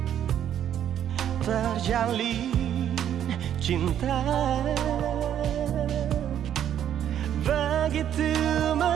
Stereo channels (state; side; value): quieter; left; 10.1 dB